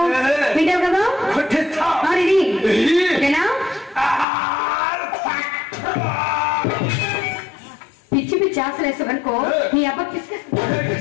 వింటావు కదా కొట్టిస్తా. ఓకేనా? పిచ్చి పిచ్చి ఆశలు వేసావనుకో నీ అబ్బ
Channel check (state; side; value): drops out; right; at 4.2 s